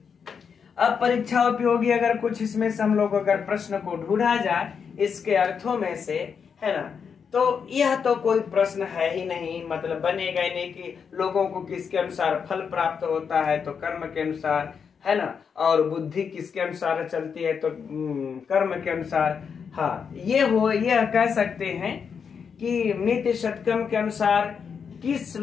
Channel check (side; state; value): right; quieter; 6.5 dB